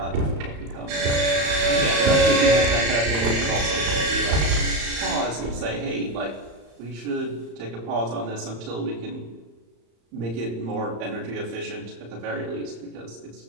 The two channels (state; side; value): late; left; 34 ms